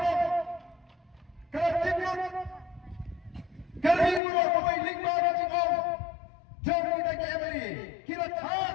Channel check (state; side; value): drops out; right; at 4.2 s